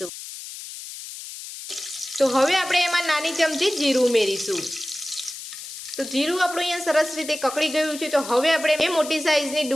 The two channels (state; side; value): noise; left; hiss, 11 dB below the sound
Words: તો હવે આપણે એમાં નાની ચમચી જીરું ઉમેરીશું। તો જીરું આપણું અહીંયા સરસ રીતે કકડી ગયું છે। તો હવે આપણે બે મોટી સાઈઝની